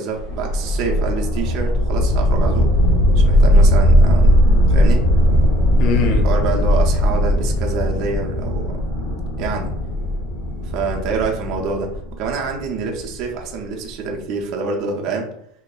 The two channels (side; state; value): both; normal; correlation 0.63